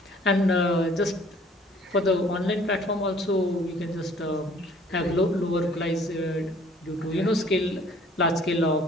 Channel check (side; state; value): both; normal; correlation 0.56